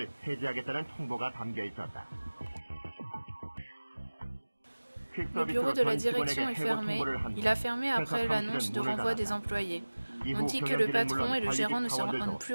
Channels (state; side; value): inverted; both; correlation -1.00